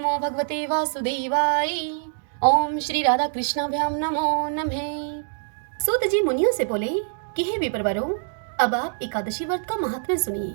भगवते वासुदेवाय। ओम श्री राधा कृष्णाभ्याम नमो नमः। सूत जी मुनियों से बोले कि हे विप्रवरों, अब आप एकादशी व्रत का महात्म्य सुनिए।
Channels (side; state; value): left; silent; digital silence